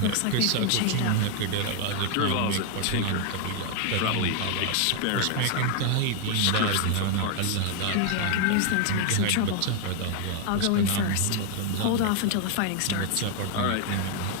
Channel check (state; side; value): different; both; correlation 0.00